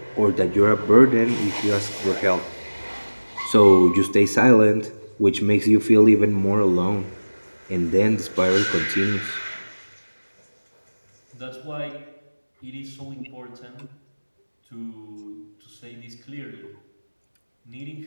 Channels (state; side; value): inverted; both; correlation -1.00